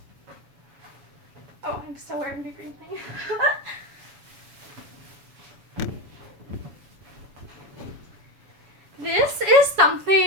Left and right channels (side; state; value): left; late; 7.3 ms